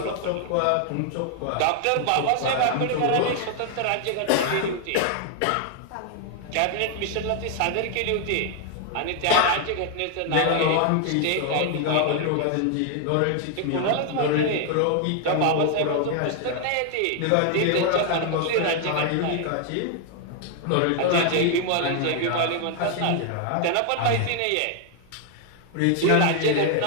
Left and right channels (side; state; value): both; different; correlation 0.00